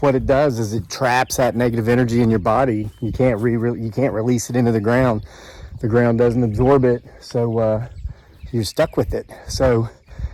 what it does is it traps that negative energy in your body. You can't release it into the ground. The ground doesn't absorb it, so you're stuck with it. So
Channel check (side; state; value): both; identical; correlation 1.00